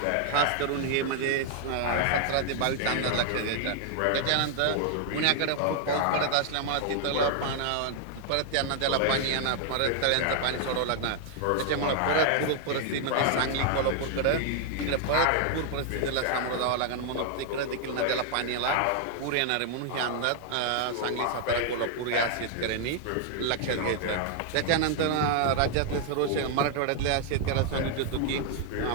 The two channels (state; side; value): different; both; correlation 0.00